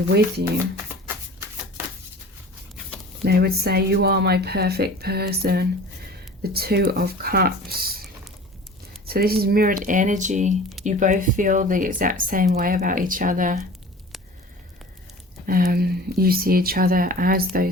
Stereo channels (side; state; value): both; normal; correlation 0.41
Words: you. They would say, you are my perfect person, the 2 of Cups. So this is mirrored energy. You both feel the exact same way about each other. You see each other as